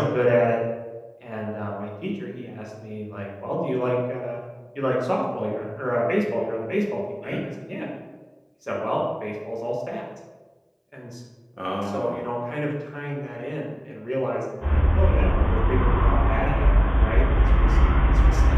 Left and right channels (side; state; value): both; identical; correlation 1.00